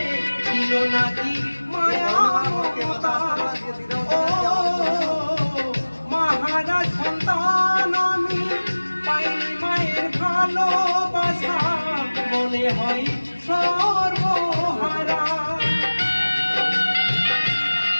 ছিল নাকি মায়া মমতা ও মহারাজ সন্তান আমি পাইনি মায়ের ভালোবাসা মনে হয় সর্বহারা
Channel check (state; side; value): inverted; both; correlation -1.00